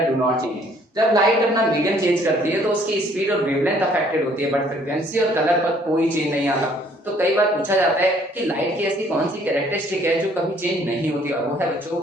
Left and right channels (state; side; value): normal; both; correlation 0.61